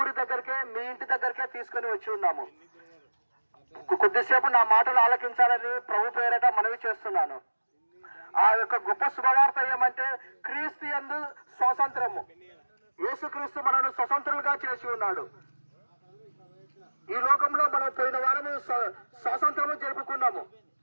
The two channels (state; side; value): inverted; both; correlation -1.00